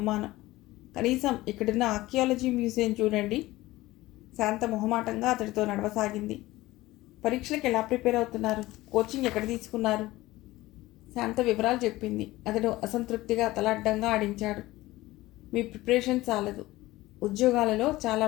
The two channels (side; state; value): right; quieter; 18.2 dB